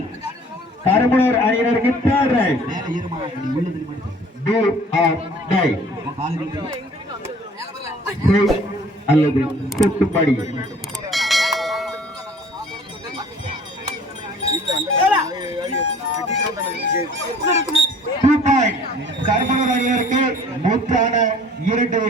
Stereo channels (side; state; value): both; normal; correlation 0.51